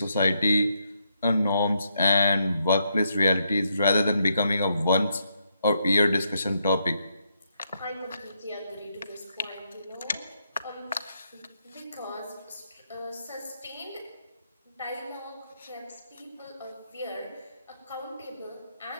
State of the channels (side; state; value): both; inverted; correlation -0.78